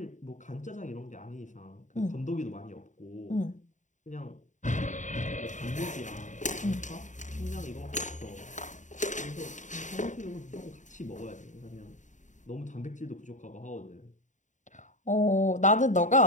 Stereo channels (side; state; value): right; late; 0.36 ms